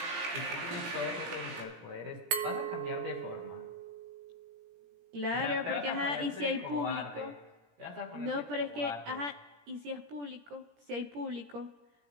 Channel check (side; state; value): left; late; 17 ms